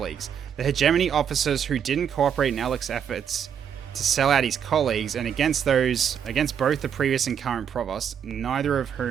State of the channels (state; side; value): quieter; left; 8.2 dB